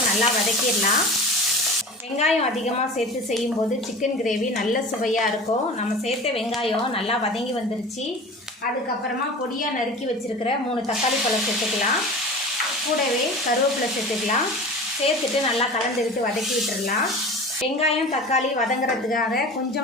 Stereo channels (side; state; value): both; normal; correlation 0.36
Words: நல்லா வதக்கிடலாம். வெங்காயம் அதிகமாக சேர்த்து செய்யும்போது சிக்கன் கிரேவி நல்ல சுவையாக இருக்கும். நம்ம சேர்த்த வெங்காயம் நல்லா வதங்கி வந்துருச்சு. அதுக்கப்புறமா பொடியாக நறுக்கி வச்சுருக்கிற 3 தக்காளி பழம் சேர்த்துக்கலாம். கூடவே கருவேப்பிலை சேர்த்துக்கலாம். சேர்த்துட்டு நல்லா கலந்து விட்டு வதக்கி விட்டுடலாம். வெங்காயம், தக்காளி வதங்குறதுக்காக